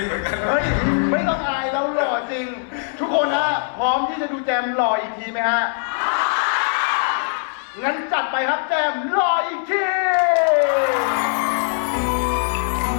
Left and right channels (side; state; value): right; silent; 65 dB below the other